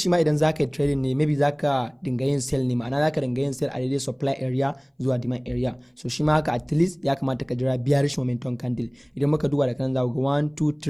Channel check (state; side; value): identical; both; correlation 1.00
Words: ma idan zaka yi trading ne maybe zaka dinga yin sell ne, ma'ana zaka dinga yin sell a daidai supply area zuwa demand area. So shi ma haka at least ya kamata ka jira bearish momentum candle. Idan muka duba da kan za ku ga 1 2